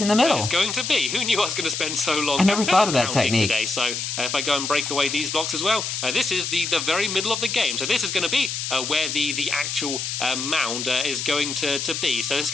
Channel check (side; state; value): left; noise; hiss, 4 dB below the sound